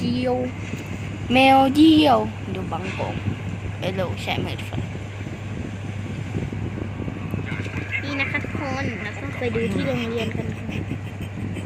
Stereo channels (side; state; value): both; identical; correlation 1.00